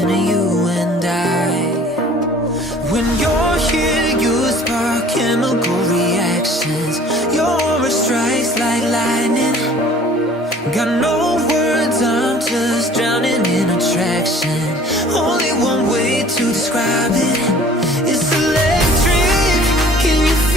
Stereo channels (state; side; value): normal; both; correlation 0.51